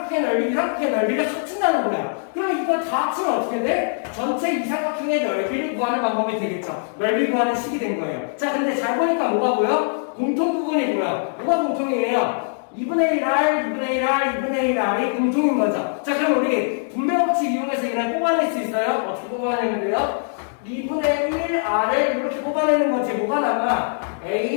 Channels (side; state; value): right; silent; 64 dB below the other